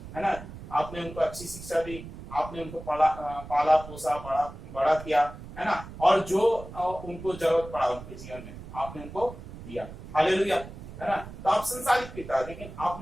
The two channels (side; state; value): right; noise; rumble, 13 dB below the sound